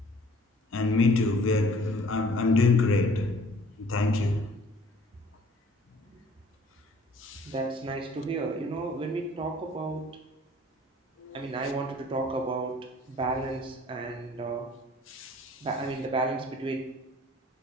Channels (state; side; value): normal; both; correlation 0.54